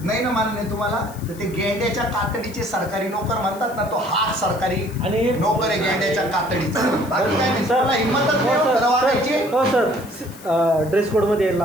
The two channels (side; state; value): left; noise; hiss, 20 dB below the sound